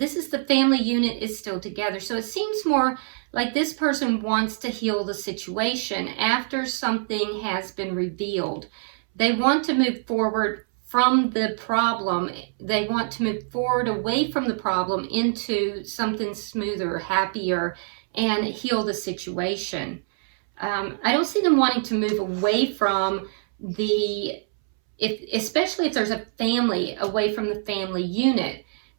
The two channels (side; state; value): left; silent; 62 dB below the other